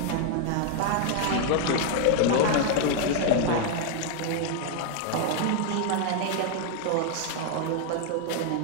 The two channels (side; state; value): both; different; correlation 0.01